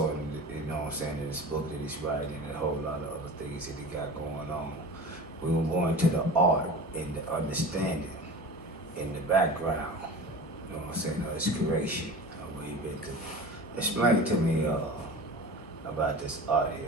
in, you know what I'm saying, in this book that he's writing and a whole lot of other things that he got going on. We will go into the art and the understanding in the background, you know what I'm saying, of his creation, where he been to. Explain to me about this art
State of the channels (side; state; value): both; normal; correlation 0.35